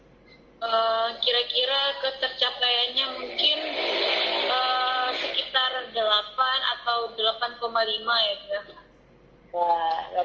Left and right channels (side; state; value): both; identical; correlation 1.00